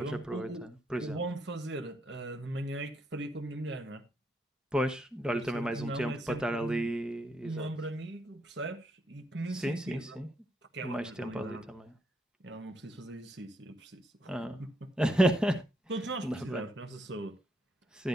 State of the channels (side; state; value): both; normal; correlation 0.77